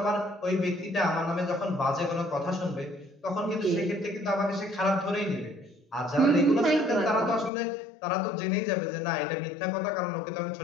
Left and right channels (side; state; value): right; drops out; at 7.5 s